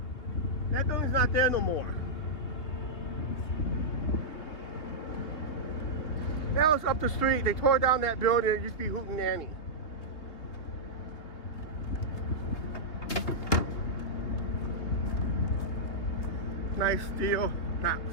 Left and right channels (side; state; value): right; late; 3.1 ms